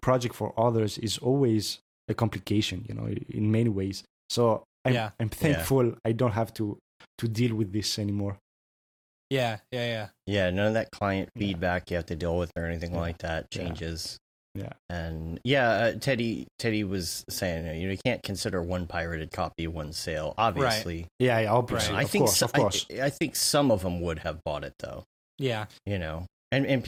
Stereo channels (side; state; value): both; identical; correlation 1.00